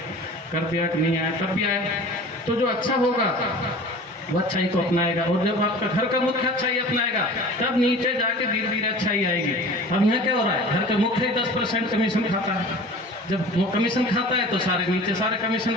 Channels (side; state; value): both; normal; correlation 0.41